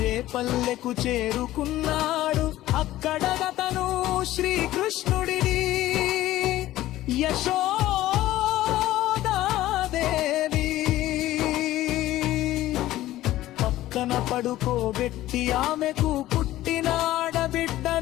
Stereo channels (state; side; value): quieter; right; 15.2 dB